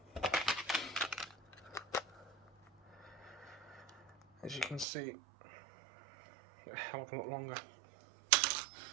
as you can see, a hell of a lot longer.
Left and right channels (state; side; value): drops out; left; at 4.9 s